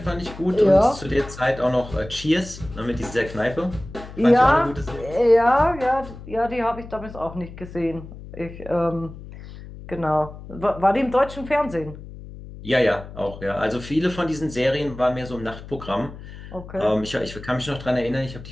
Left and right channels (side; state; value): left; noise; hum, 14 dB below the sound